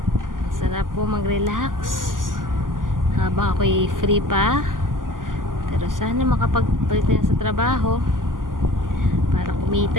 Sarap po mag-relax habang ako'y free pa. Pero sana makapag-balik na sa trabaho para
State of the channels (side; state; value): left; late; 0.90 ms